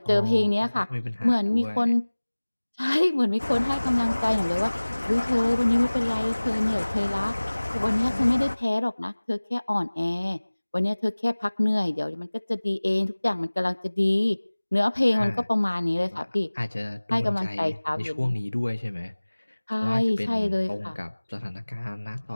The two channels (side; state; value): both; inverted; correlation -1.00